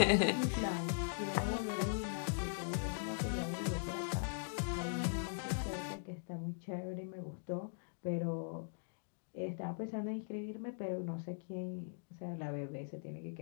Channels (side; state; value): right; silent; digital silence